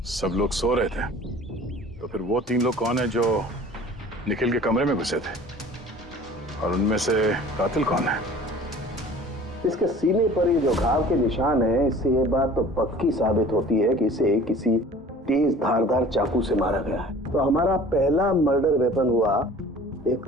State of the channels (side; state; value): both; normal; correlation 0.46